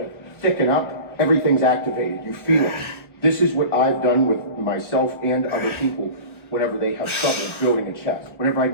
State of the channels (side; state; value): right; late; 1.1 ms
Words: of thicken up, everything's activated. You feel it. This is what I've done with myself and other people whenever they have trouble building a chest. Whenever I